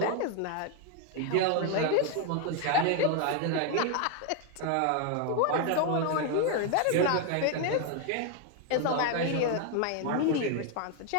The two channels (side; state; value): both; different; correlation 0.01